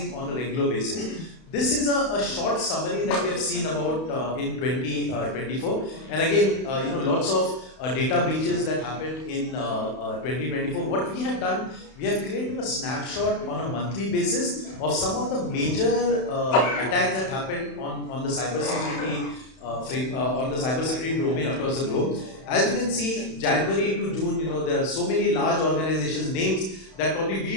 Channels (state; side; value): late; right; 31 ms